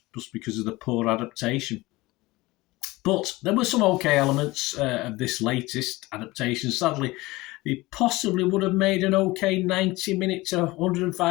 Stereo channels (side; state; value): right; quieter; 20.6 dB